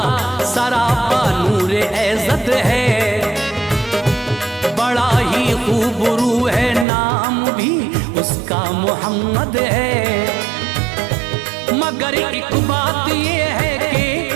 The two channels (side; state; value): left; drops out; at 6.9 s